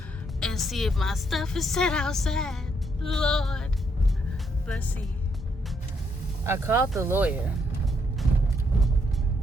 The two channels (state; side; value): normal; both; correlation 0.75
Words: and see if my stuff is set outside. Lord, let's see. I called the lawyer